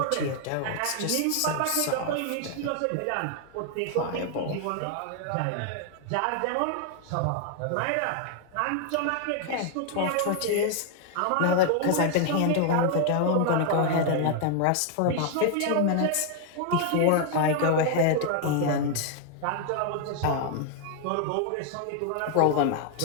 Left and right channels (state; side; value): different; both; correlation 0.00